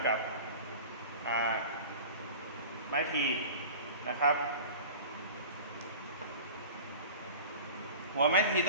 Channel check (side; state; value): both; inverted; correlation -0.38